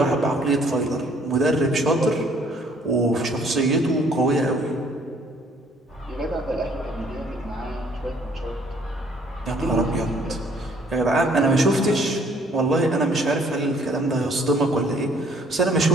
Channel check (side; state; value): both; normal; correlation 0.61